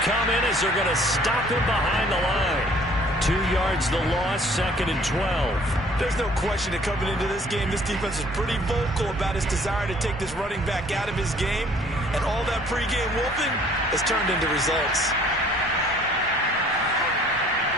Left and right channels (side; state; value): both; normal; correlation 0.56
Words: in as they're going to stop him behind the line. 2 yards the loss, 2nd and 12. There's no question that coming into this game, this defense is pretty vocal about its desire to take this running back out of his game. And all that pregame whooping has turned into results.